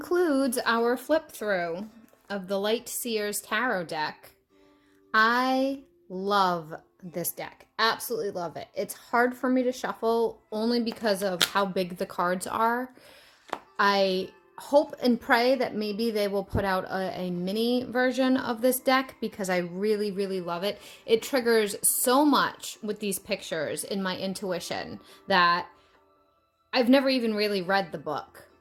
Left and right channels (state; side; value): identical; both; correlation 1.00